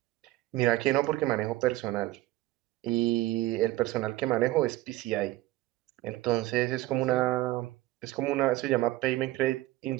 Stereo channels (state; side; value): quieter; left; 17.0 dB